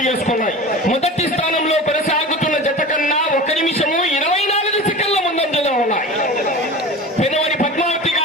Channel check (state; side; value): normal; both; correlation 0.34